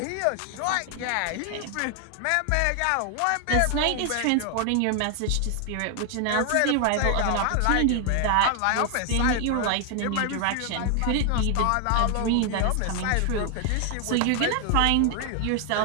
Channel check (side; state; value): both; different; correlation 0.00